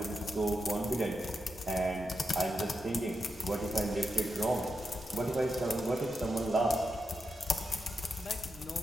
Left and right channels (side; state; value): both; normal; correlation 0.86